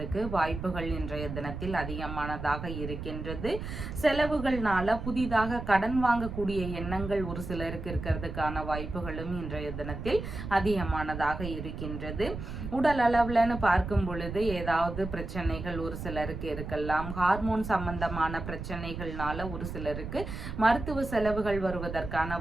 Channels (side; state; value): right; noise; rumble, 7 dB below the sound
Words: வாய்ப்புகள் இன்றைய தினத்தில் அதிகமானதாக இருக்கின்றது. செலவுகள்னால புதிதாக கடன் வாங்கக்கூடிய எண்ணங்கள் ஒரு சிலருக்கு இருக்கிறதுக்கான வாய்ப்புகளும் இன்றைய தினத்தில் அதிகமானதாக இருக்கின்றது. உடல் அளவுலன்னு பார்க்கும் பொழுது ஏதாவது பிரச்சனைகள் ஒரு சிலருக்கு இருக்கலாம். ஹார்மோன் சம்பந்தமான பிரச்சனைகள்னால ஒரு சிலருக்கு மருத்துவ செலவுகள் வருவதற்கான